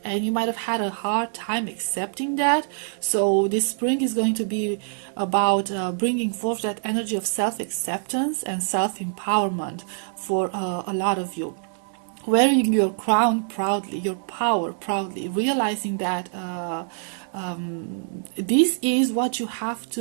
and you might have had a hard time accepting that. So this spring is going to be about bringing forth that energy of self-acceptance and self-empowerment for a lot of you. Wearing your crown proudly, your power proudly, realizing that this is what you have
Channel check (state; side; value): silent; left; 60 dB below the other